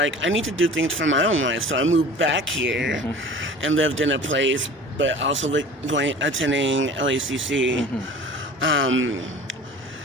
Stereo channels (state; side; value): normal; both; correlation 0.41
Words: I need to do things for my own life. So I moved back here and lived in a place, but also attending LACC. Mm-hmm.